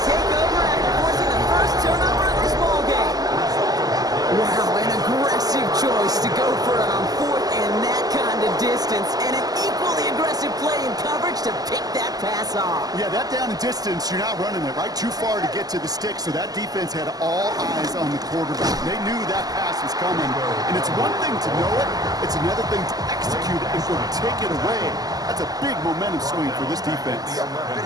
take over after forcing the first turnover of this ball game. Wow, an aggressive choice to go for it on 4th and that kind of distance. And an equally aggressive play in coverage to pick that pass off. Yeah, that down and distance, you're not running it right too far to get to the stick, so that defense had all eyes on the quarterback. They knew that pass was coming, and it's one thing to know it, it's another thing to execute it and go take it away. That's a big momentum swing for this defense.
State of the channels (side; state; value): left; late; 0.18 ms